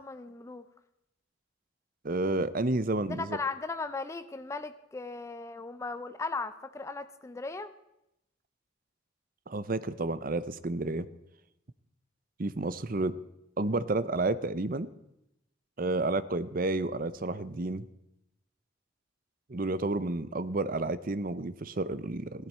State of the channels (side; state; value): both; normal; correlation 0.33